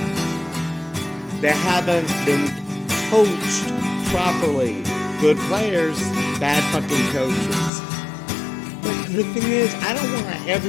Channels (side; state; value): right; drops out; at 7.7 s